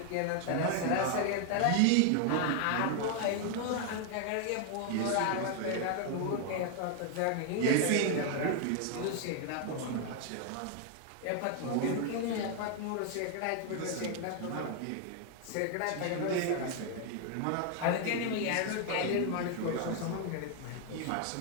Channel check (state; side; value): different; both; correlation 0.00